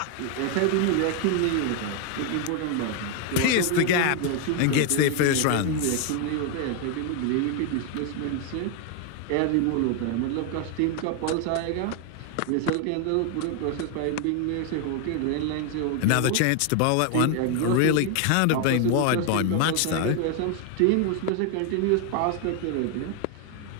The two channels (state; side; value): different; both; correlation 0.01